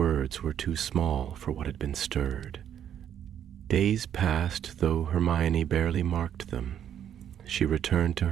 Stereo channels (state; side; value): quieter; left; 9.6 dB